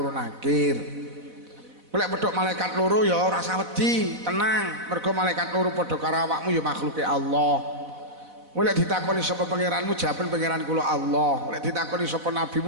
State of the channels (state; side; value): late; left; 4.1 ms